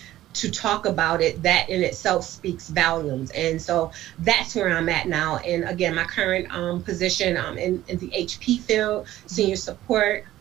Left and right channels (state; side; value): quieter; left; 14.4 dB